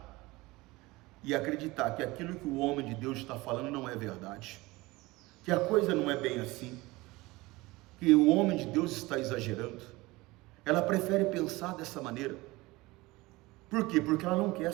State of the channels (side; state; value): left; quieter; 21.2 dB